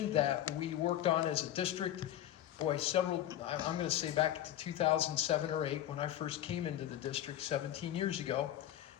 that we worked on as a district, boy, I'm going to say back to 2007 or 8 when I first came into the district 17 years ago.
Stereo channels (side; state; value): right; quieter; 12.2 dB